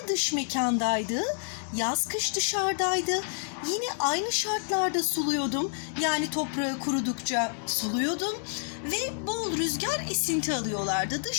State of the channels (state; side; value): silent; right; 59 dB below the other